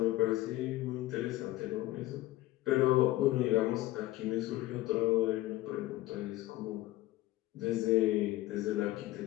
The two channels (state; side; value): quieter; right; 17.0 dB